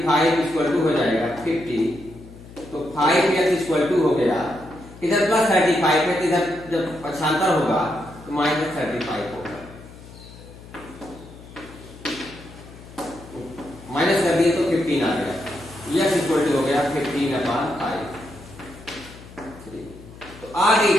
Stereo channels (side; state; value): left; noise; hum, 18 dB below the sound